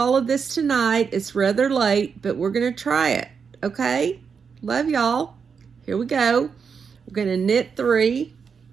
of this tonight. It's rather late, but we're going to try it. Okay? Love y'all. Here we go. We're going to knit 3.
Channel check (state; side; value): quieter; left; 6.1 dB